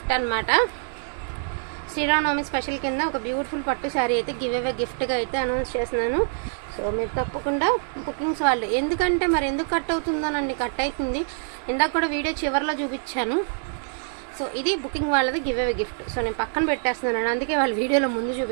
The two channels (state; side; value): silent; left; 62 dB below the other